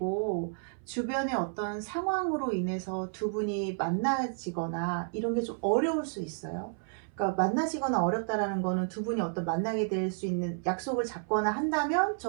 주변의 어떤 상황으로 인해서 두 분이 만나지거나 이런 게 좀 어려울 수 있어요. 그러니까 만나지거나 어렵다라는 거는 두 분이 어떤 만나게 될 수 있는 약속을 잡거나 한다면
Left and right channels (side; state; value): left; silent; 57 dB below the other